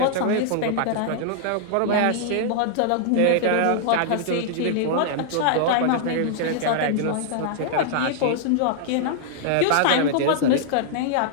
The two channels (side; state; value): both; different; correlation -0.01